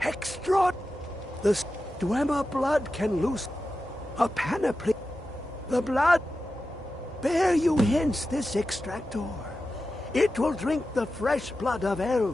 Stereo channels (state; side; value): normal; both; correlation 0.92